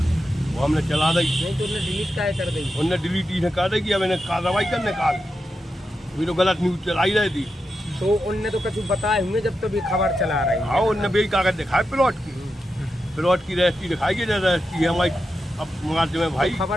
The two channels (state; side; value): normal; both; correlation 0.88